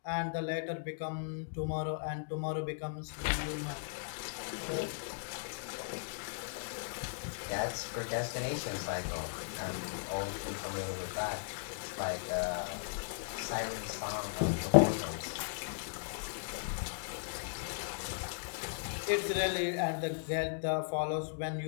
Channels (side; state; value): right; silent; digital silence